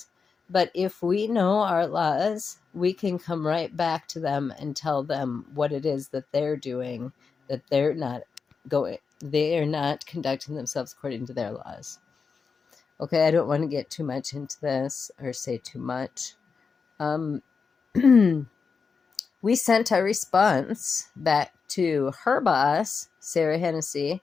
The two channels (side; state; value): right; quieter; 5.3 dB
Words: But if we know our laws, we can come right back to them and tell them what it is that they're doing, that they are not conducting themselves according to their laws. Okay, I don't want to get too much into this or say too much. We sent our response back to her boss, Sarah Hennessy,